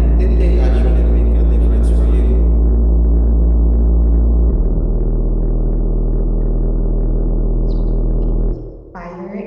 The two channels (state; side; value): identical; both; correlation 1.00